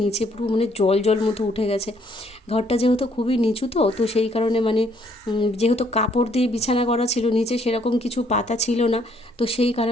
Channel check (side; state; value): both; normal; correlation 0.67